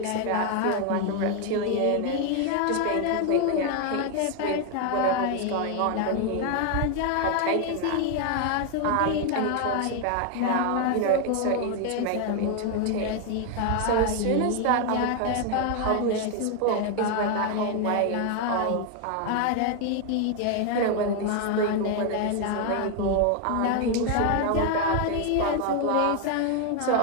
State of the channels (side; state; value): both; different; correlation 0.01